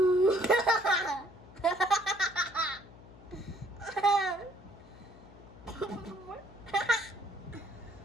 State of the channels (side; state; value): left; noise; hum, 20 dB below the sound